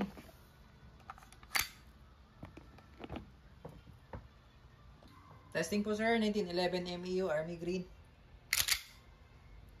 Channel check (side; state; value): both; identical; correlation 1.00